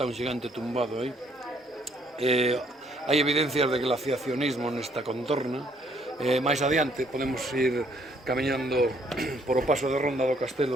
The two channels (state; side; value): normal; both; correlation 0.66